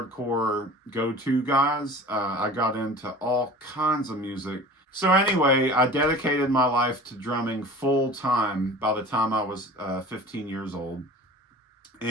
go-to guys. I got into all kinds of music. So anyway, I dedicated my life to drumming full time by the time I was 15 years old.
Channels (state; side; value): normal; both; correlation 0.40